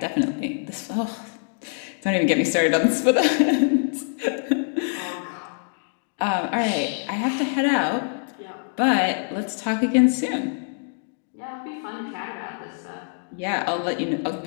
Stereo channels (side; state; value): right; silent; digital silence